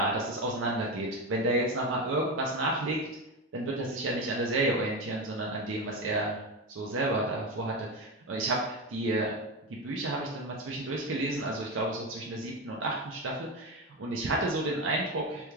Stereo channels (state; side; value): normal; both; correlation 0.16